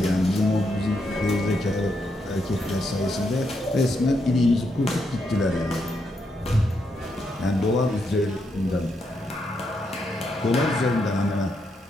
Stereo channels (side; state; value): both; normal; correlation 0.80